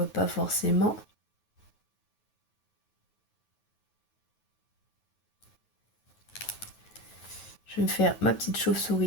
pas forcément. Je vais me faire ma petite chauve-souris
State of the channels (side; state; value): right; late; 9.3 ms